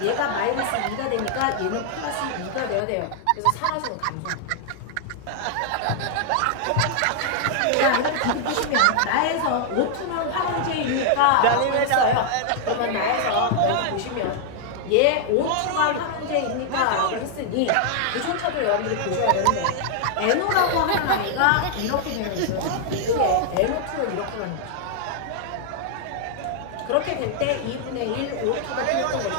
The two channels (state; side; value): different; both; correlation 0.00